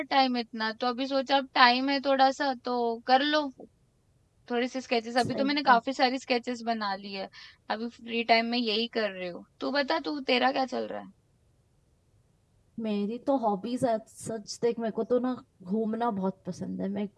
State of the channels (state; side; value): identical; both; correlation 1.00